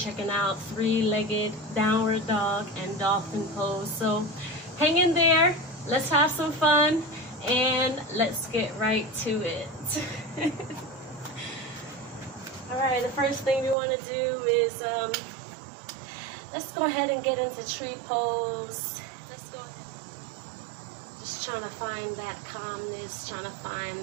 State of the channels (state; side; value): drops out; left; at 13.8 s